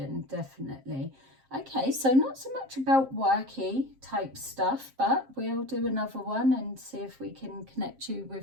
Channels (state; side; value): late; left; 7.5 ms